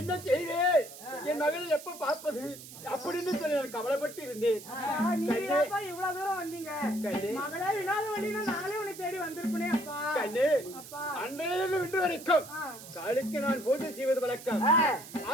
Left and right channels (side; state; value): right; noise; hiss, 15 dB below the sound